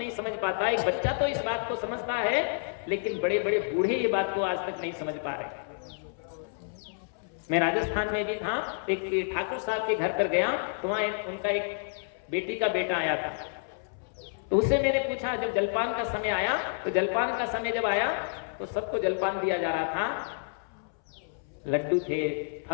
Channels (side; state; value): right; silent; 58 dB below the other